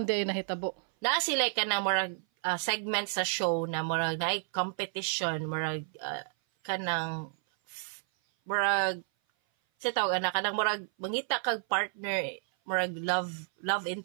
di ay nahitabo? Naa sila ka na murag segment sa show na murag naay competition, murag kanang murag sa tawag anak kanang murag mangita kag partner, murag love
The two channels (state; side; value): silent; left; 56 dB below the other